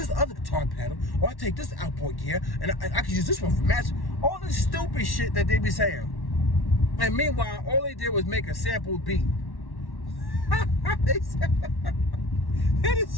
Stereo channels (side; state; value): right; late; 1.1 ms